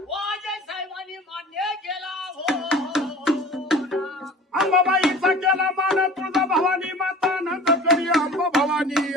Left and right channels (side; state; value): both; normal; correlation 0.41